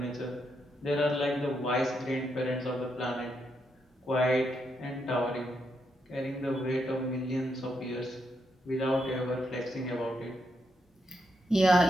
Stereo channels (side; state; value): both; normal; correlation 0.80